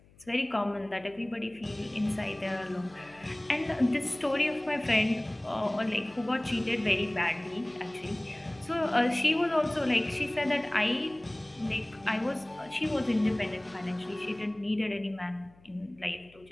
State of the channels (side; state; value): left; noise; hum, 27 dB below the sound